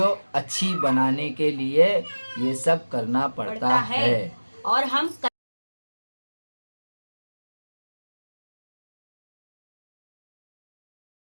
अच्छी बनाने के लिए ये सब करना पड़ता है। और हम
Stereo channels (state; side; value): inverted; both; correlation -1.00